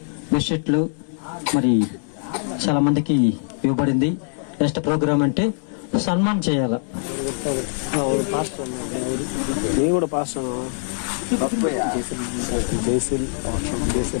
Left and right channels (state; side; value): silent; right; digital silence